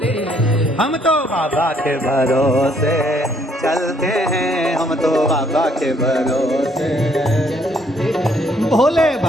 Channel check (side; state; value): both; normal; correlation 0.66